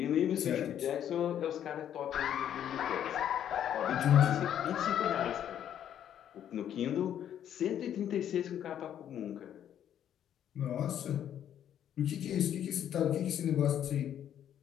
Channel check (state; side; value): quieter; right; 10.1 dB